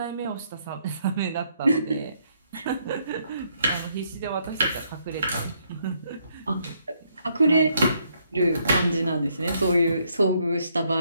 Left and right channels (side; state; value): both; inverted; correlation -0.72